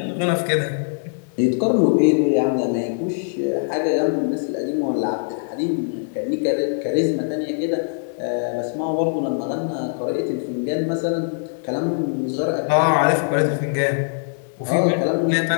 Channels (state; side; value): silent; right; digital silence